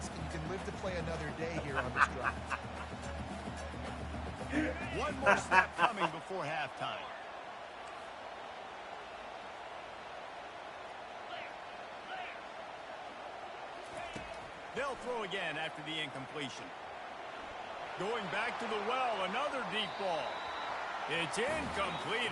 and you can live to play another day here on this drive. One more snap coming before halftime. They'll throw again after the incompletion. Going back to the well, another deep ball. It's incomplete,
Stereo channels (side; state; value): both; identical; correlation 1.00